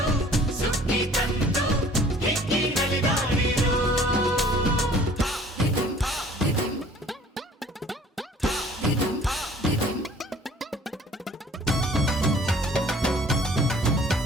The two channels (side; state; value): both; normal; correlation 0.52